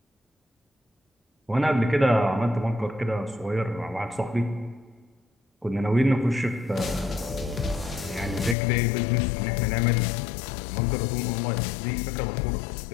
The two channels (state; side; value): drops out; right; at 8.6 s